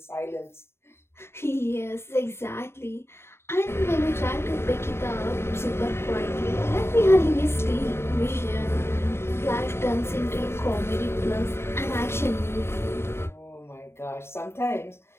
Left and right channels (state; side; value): late; right; 0.12 ms